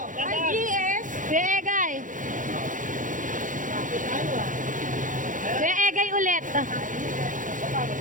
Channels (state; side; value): late; left; 0.38 ms